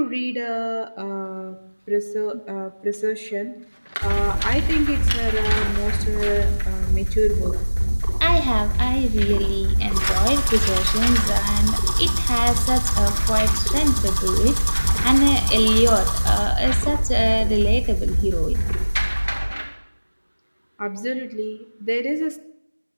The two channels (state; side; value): inverted; both; correlation -1.00